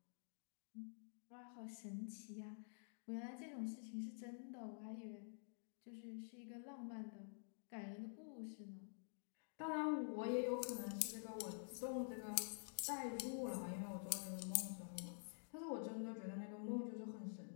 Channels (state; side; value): silent; right; digital silence